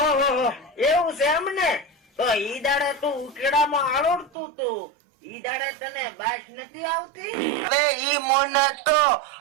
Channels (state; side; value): drops out; left; at 4.3 s